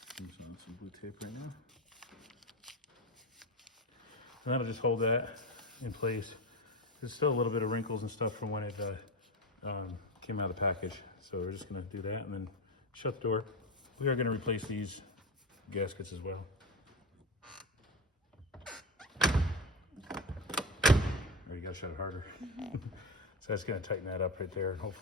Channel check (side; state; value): both; normal; correlation 0.19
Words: I'm on some blue tape right now. And that'll just hold that in place. There's still a little bit of wrinkles and stuff from when it came out of the package. So we're just gonna do that and then shut the door. We are gonna replace these gaskets as well. Or you gotta shut it harder. So that's gonna tighten that up right there and